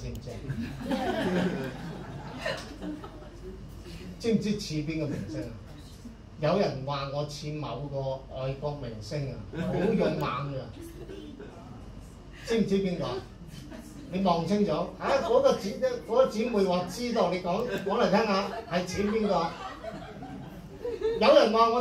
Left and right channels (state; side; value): identical; both; correlation 1.00